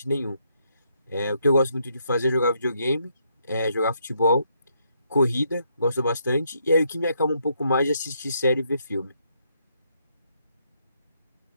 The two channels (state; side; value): inverted; both; correlation -0.75